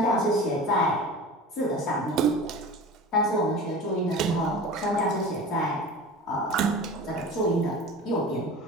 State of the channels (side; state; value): both; normal; correlation 0.35